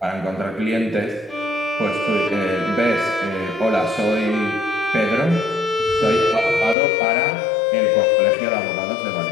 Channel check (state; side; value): drops out; right; at 6.8 s